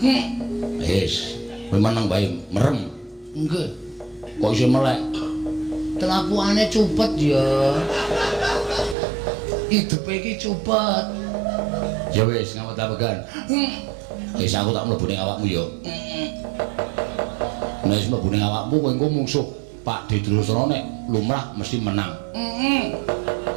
Wis, kowe meneng bae merem. Nggih. Kok iso melek? Kelakuane cupet ya. Hidupe iki cupet. Ya wis, ngampet ambegan. Wis aku tak mlebu ning awakmu ya. Nek wis mlebu ning awakmu kowe engko mungsuh Pak Didrasana nek lumrah mesti menang.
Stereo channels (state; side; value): drops out; left; at 9.0 s